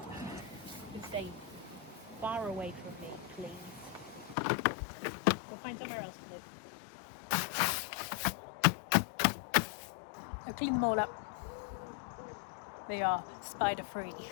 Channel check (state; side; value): drops out; right; at 4.4 s